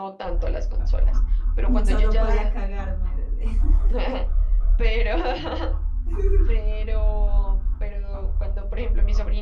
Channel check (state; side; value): identical; both; correlation 1.00